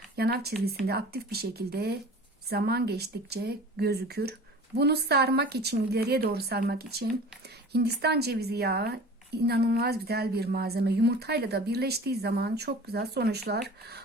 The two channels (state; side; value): normal; both; correlation 0.41